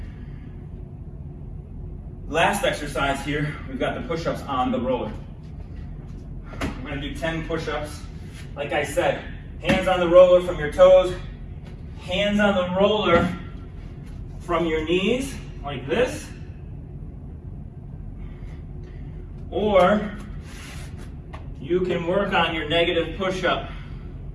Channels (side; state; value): both; identical; correlation 1.00